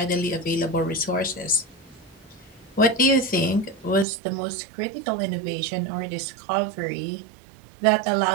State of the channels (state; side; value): drops out; left; at 4.0 s